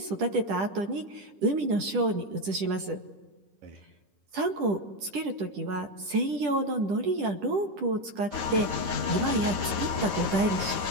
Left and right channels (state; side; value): late; left; 10 ms